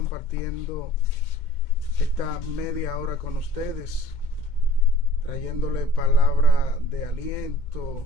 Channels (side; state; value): right; late; 2.2 ms